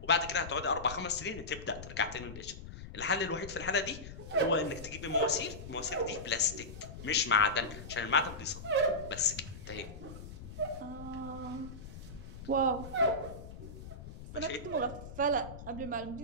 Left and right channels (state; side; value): noise; left; rumble, 12 dB below the sound